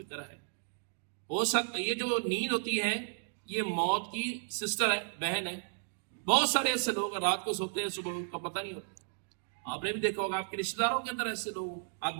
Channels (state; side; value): silent; left; digital silence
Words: ہے. ہو سکتا یہ جو نیند ہوتی ہے یہ موت کی سسٹر ہے, بہن ہے. بہت سارے ایسے لوگ رات کو سوتے ہیں, صبح کا پتہ نہیں ہوتا. آپ نے بھی دیکھا ہوگا آپ کے رشتے داروں کے اندر ایسے لوگ, آپ